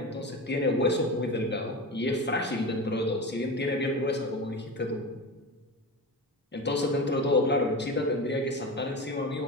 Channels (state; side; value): normal; both; correlation 0.25